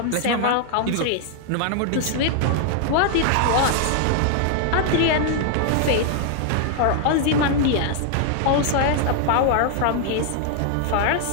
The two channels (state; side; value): different; both; correlation 0.00